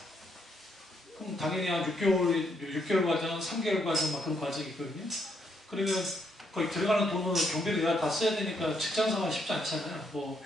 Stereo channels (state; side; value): normal; both; correlation 0.75